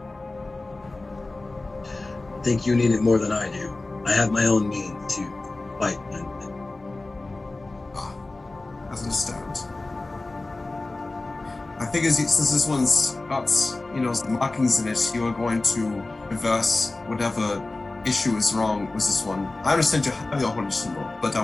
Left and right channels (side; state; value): right; quieter; 3.1 dB